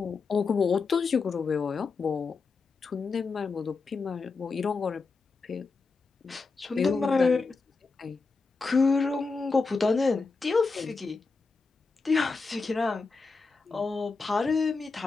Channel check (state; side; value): quieter; right; 4.3 dB